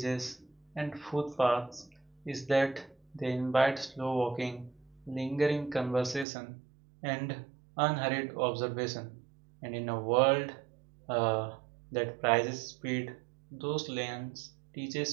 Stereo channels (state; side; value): drops out; left; at 6.2 s